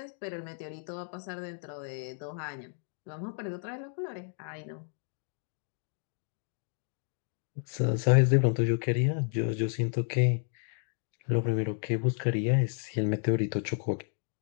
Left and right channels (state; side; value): silent; right; 56 dB below the other